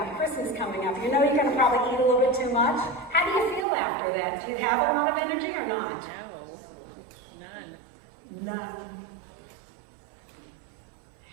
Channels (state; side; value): drops out; left; at 3.7 s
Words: Christmas coming up. You know you're going to probably eat a little bit too much. How do you feel after that? Do you have a lot of energy or not? None.